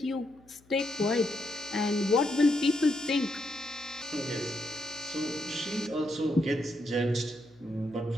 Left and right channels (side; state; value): left; noise; hum, 29 dB below the sound